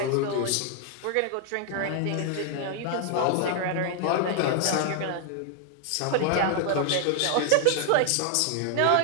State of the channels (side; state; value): both; different; correlation 0.00